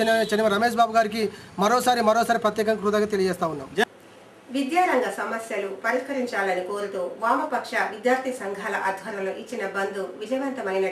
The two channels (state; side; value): identical; both; correlation 1.00